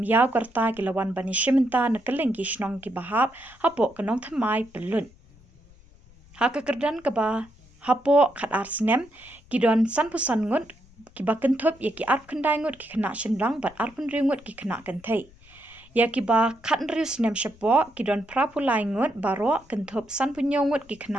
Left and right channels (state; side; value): noise; left; rumble, 26 dB below the sound